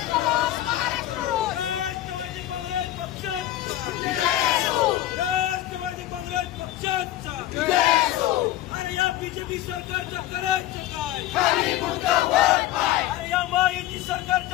राष्ट्रवादी काँग्रेस पक्षाचा, राष्ट्रवादी काँग्रेस पक्षाचा. अरे या बीजेपी सरकारचं करायचं काय? अरे या महायुती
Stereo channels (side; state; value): right; quieter; 14.0 dB